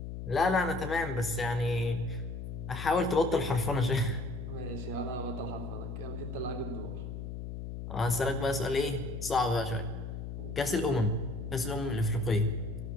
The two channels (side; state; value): left; noise; hum, 7 dB below the sound